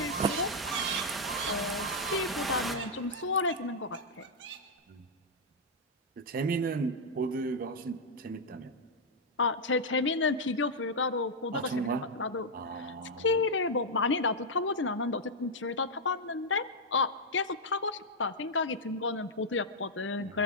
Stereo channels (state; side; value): normal; both; correlation -0.04